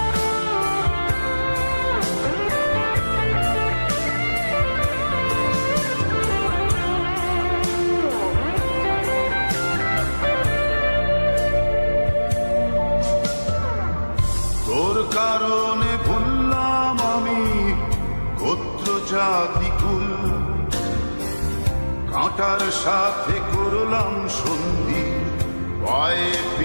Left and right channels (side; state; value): both; inverted; correlation -1.00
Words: তোর কারণে ভুললাম আমি গোত্র জাতি কুল, কাঁটার সাথে করলাম সন্ধি পায়ে